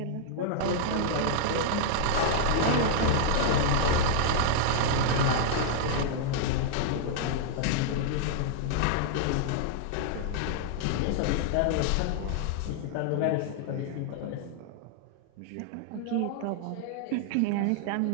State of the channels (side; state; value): both; different; correlation -0.01